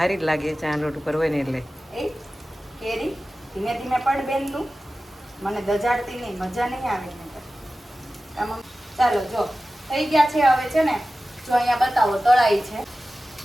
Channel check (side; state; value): both; normal; correlation 0.95